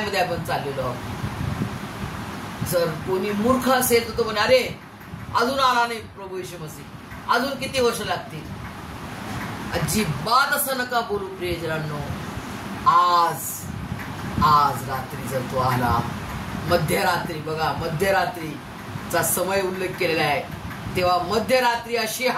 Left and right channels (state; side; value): identical; both; correlation 1.00